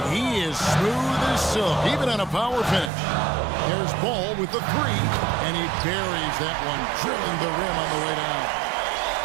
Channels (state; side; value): drops out; left; at 2.9 s